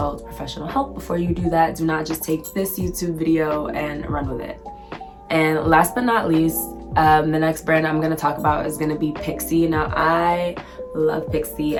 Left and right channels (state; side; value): identical; both; correlation 1.00